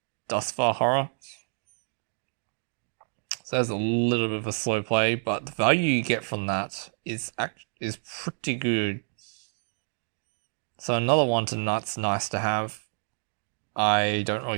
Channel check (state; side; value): silent; left; digital silence